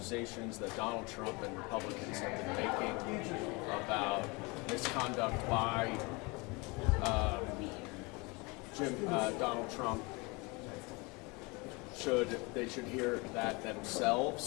that Donald Trump and Republicans have been making about misconduct by Donald Trump, they should hear that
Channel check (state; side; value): quieter; right; 27.2 dB